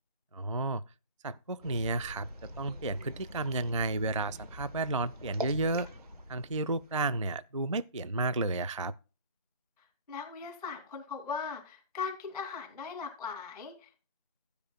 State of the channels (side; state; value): both; inverted; correlation -0.42